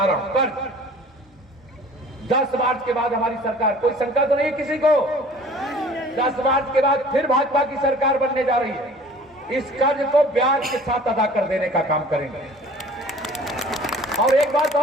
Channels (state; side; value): normal; both; correlation 0.48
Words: रहा हूं, कर्ज। 10 मार्च के बाद हमारी सरकार, कोई शंका तो नहीं है किसी को? 10 मार्च के बाद फिर भाजपा की सरकार बनने जा रही है। इस कर्ज को ब्याज के साथ अदा कर देने का काम करेंगे। और एक बात